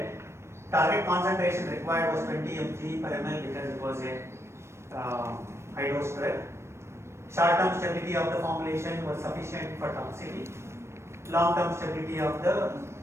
Target concentration required was 20 mg per ml because it was a high dose drug. Short-term stability of the formulation was sufficient for toxicity. Long-term stability of the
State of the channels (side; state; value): left; late; 0.13 ms